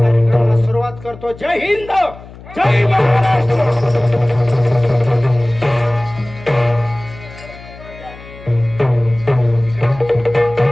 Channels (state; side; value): noise; left; hum, 18 dB below the sound